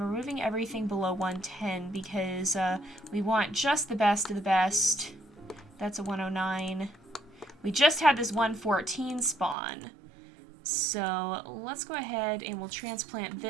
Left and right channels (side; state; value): left; drops out; at 9.6 s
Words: removing everything below 110 because we want just the best of the best. That's a 109. We just had this 114 spawn. So let's go ahead and we'll transplant